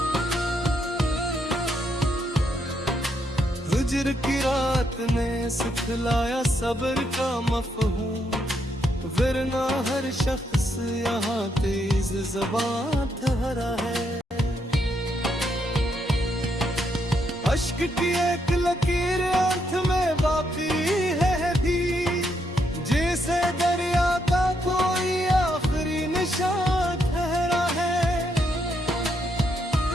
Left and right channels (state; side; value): normal; both; correlation 0.77